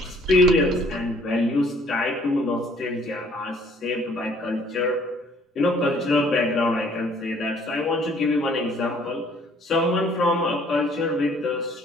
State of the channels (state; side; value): normal; both; correlation 0.59